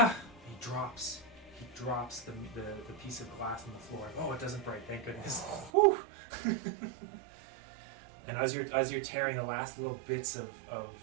drops the piece of glass on the floor. Oh, it doesn't break, thank goodness. Whew. And as you're tearing the last little bits of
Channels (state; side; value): drops out; left; at 5.7 s